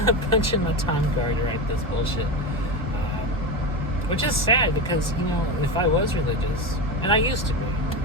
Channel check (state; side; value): normal; both; correlation 0.18